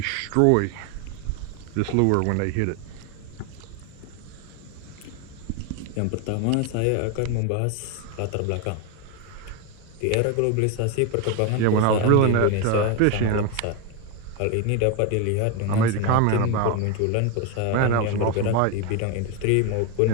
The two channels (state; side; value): different; both; correlation 0.01